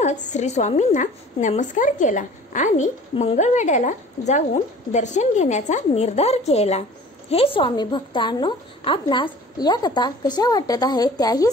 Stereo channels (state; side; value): normal; both; correlation 0.46